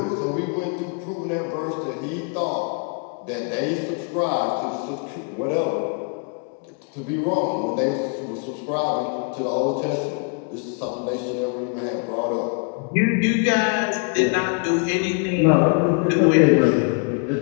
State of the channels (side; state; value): right; quieter; 36.9 dB